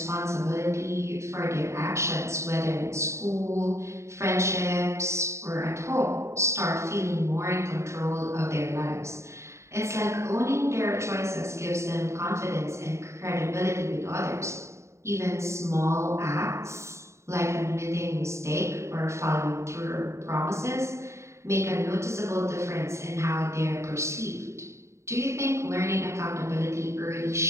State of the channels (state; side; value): late; left; 0.14 ms